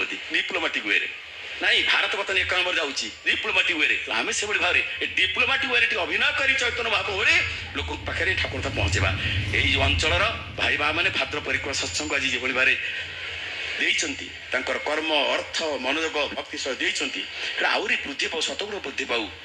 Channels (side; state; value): both; identical; correlation 1.00